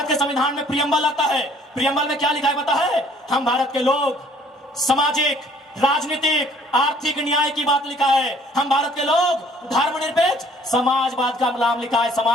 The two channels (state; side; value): normal; both; correlation 0.58